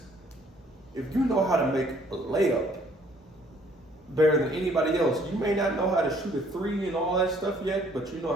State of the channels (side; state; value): both; normal; correlation 0.61